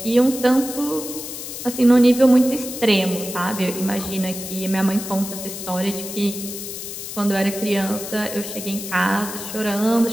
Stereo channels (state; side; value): noise; left; hiss, 9 dB below the sound